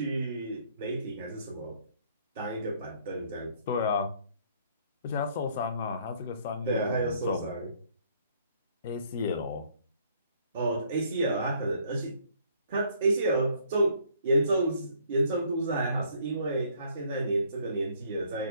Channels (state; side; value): inverted; both; correlation -0.64